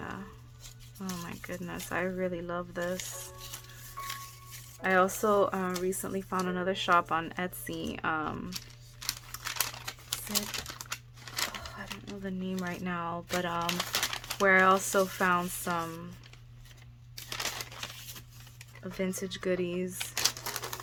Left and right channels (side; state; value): both; identical; correlation 1.00